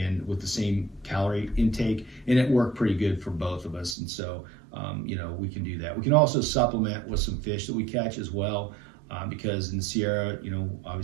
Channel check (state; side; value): drops out; left; at 4.0 s